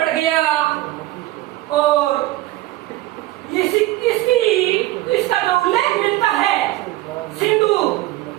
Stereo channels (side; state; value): left; quieter; 16.8 dB